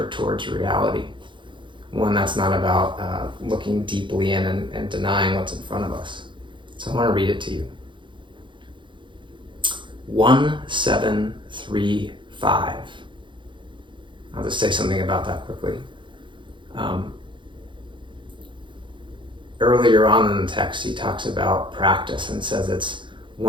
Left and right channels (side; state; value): left; late; 0.23 ms